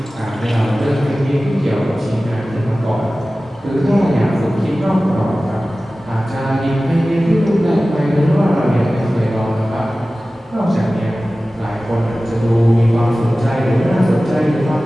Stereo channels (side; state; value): both; normal; correlation 0.96